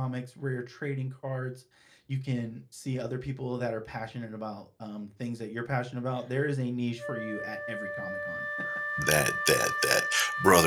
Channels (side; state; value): both; identical; correlation 1.00